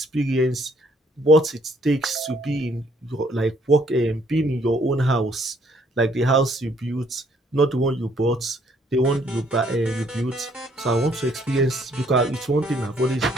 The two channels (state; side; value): normal; both; correlation 0.66